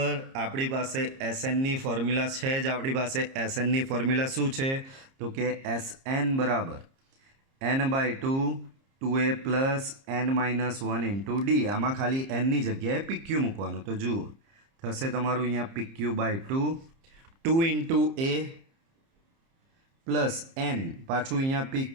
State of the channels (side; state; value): left; late; 30 ms